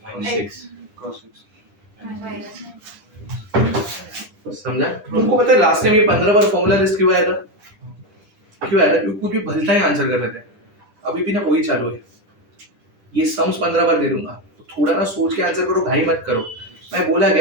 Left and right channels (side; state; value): left; late; 10 ms